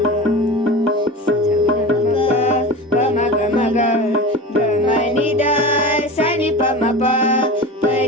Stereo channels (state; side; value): normal; both; correlation 0.31